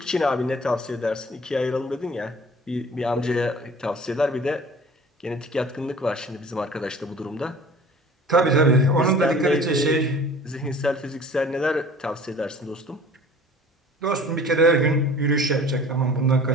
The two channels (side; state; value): both; normal; correlation 0.46